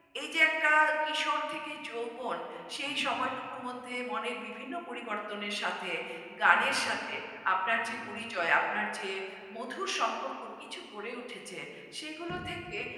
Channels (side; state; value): both; identical; correlation 1.00